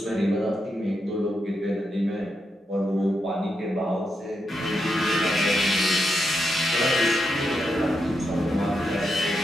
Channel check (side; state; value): both; normal; correlation 0.84